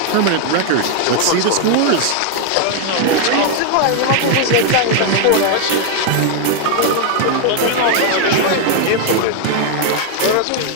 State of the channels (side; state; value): both; different; correlation 0.00